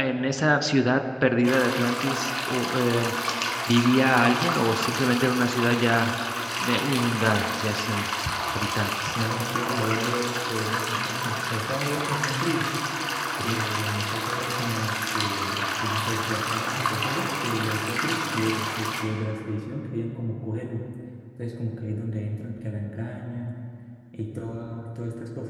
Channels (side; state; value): both; identical; correlation 1.00